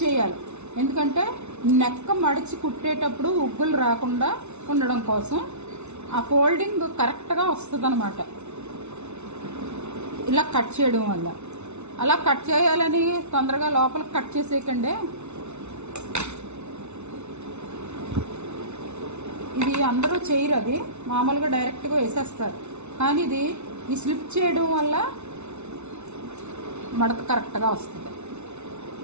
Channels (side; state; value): left; late; 0.81 ms